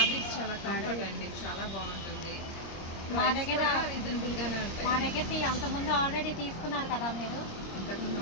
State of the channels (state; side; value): late; right; 26 ms